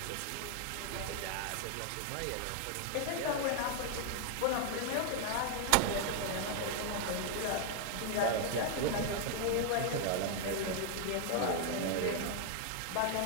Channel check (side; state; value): both; different; correlation 0.00